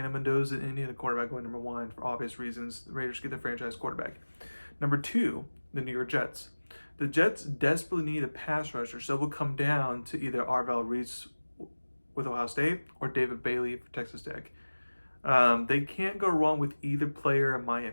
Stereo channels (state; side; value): inverted; both; correlation -1.00